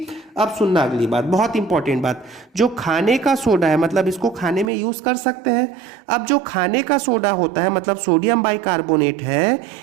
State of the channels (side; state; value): left; drops out; at 4.7 s